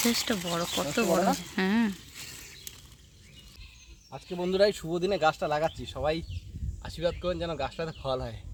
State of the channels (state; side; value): identical; both; correlation 1.00